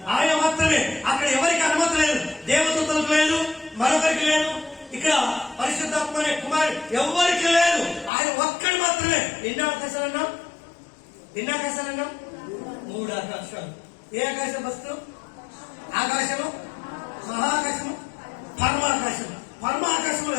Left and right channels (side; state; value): right; drops out; at 8.1 s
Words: ఆయన మాత్రమే. అక్కడ ఎవరికి అనుమతి లేదు, దేవదూతలకు లేదు, మరొకరికి లేదు. ఇక్కడ పరిశుద్ధాత్మ అనే కుమారుడు ఎవరికి లేదు. ఆయన ఒక్కడు మాత్రమే. ఎన్ని ఆకాశాలన్నా? 3 ఆకాశాలు. ఏ ఆకాశం వస్తు? ఆకాశము, మహాకాశము, పరమాకాశము. పరమాకాశంలో